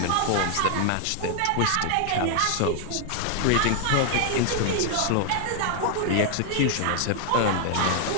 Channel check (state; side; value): different; both; correlation 0.00